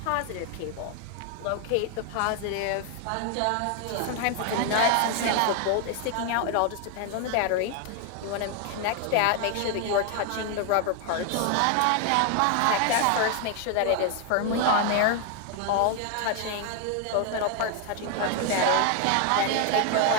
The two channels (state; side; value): different; both; correlation 0.00